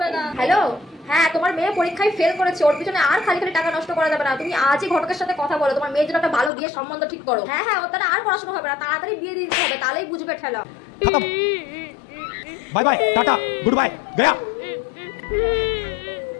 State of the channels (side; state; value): right; drops out; at 6.5 s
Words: না। হ্যালো হ্যাঁ তোমার মেয়ে পরীক্ষায় ফেল করেছে, ওর পিছনে আর খালি খালি টাকা নষ্ট করা যাবে না। তুমি আজই ঘটকের সাথে কথা বলো, তোমার মেয়ের জন্য একটা ভালো বিয়ের সম্বন্ধ ঠিক করো। হ্যাঁ হ্যাঁ ওর দ্বারা আর পড়াশোনা হবে না, তাড়াতাড়ি বিয়ে দিতে হবে, তাহলেই বুঝবে ঠেলা। Bye bye tata good bye गया।